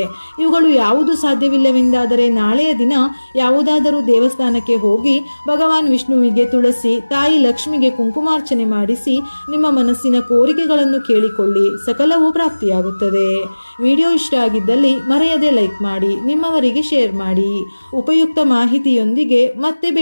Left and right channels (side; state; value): both; inverted; correlation -1.00